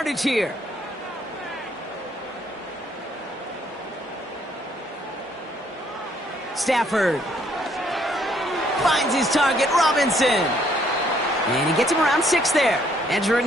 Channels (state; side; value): normal; both; correlation 0.67